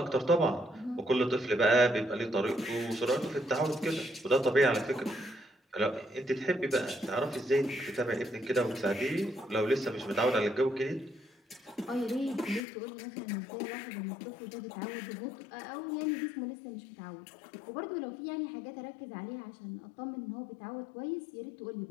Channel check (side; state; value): right; drops out; at 12.6 s